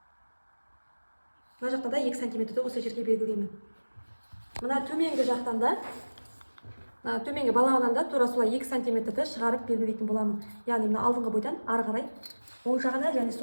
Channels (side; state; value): both; inverted; correlation -1.00